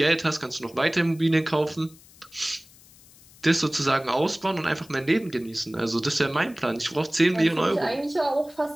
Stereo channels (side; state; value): left; noise; hiss, 25 dB below the sound